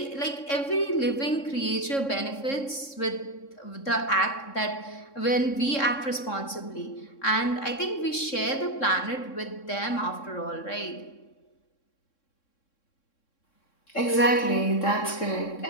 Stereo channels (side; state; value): right; late; 3.6 ms